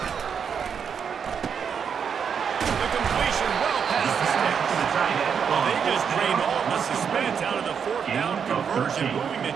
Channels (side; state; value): left; quieter; 7.0 dB